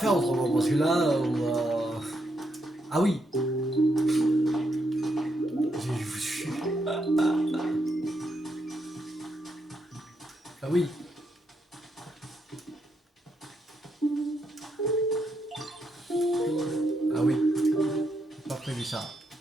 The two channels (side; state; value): both; normal; correlation 0.79